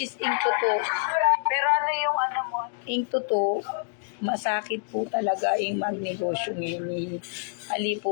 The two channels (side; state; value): right; silent; digital silence